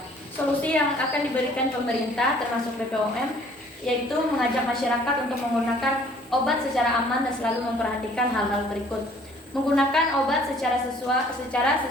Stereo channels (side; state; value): both; normal; correlation 0.56